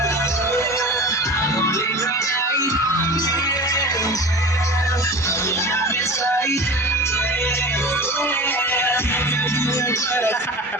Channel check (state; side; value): normal; both; correlation 0.34